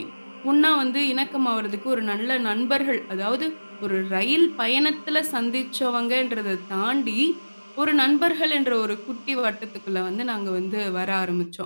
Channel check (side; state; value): both; inverted; correlation -1.00